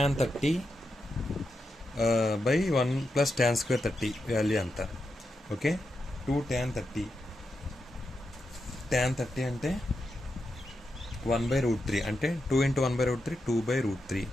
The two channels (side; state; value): both; normal; correlation 0.86